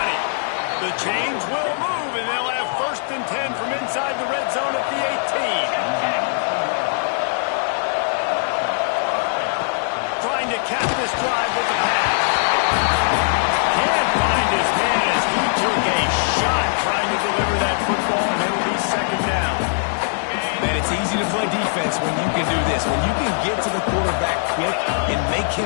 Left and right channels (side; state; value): right; silent; digital silence